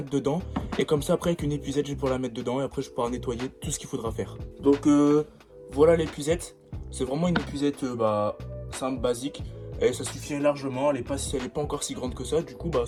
dedans. Et comme ça, après avec une épuisette, je vais pouvoir la mettre dedans. Et après, je pourrai nettoyer tout ce qu'il faudra faire. Donc voilà l'épuisette. C'est vraiment une épuisette simple, basique. Et ça suffit largement. Elle est pas encore si grande que ça. Du coup,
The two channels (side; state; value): both; identical; correlation 1.00